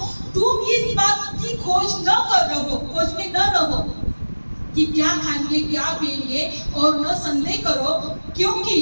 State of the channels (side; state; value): both; inverted; correlation -1.00